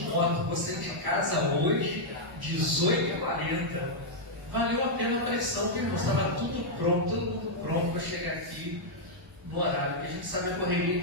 moto. Você de casa hoje, 18h40. Valeu a pena a pressão, viu, irmão? Estava tudo pronto, todo mundo pronto para chegar aqui no horário. Porque a gente sabe a correria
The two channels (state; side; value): normal; both; correlation -0.05